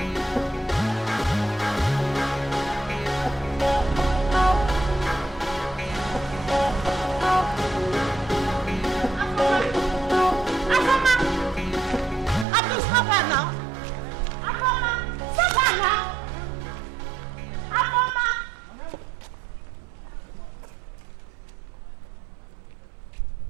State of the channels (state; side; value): drops out; left; at 12.5 s